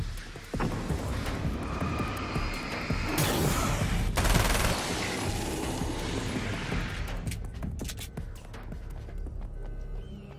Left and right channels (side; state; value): both; identical; correlation 1.00